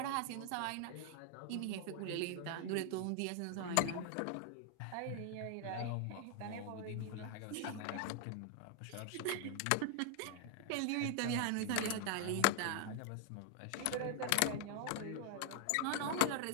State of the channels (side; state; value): both; different; correlation 0.00